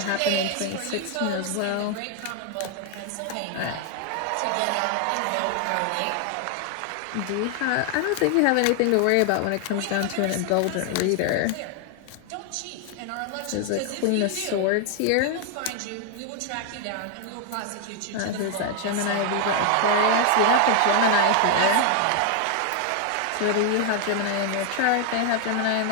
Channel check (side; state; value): both; different; correlation 0.00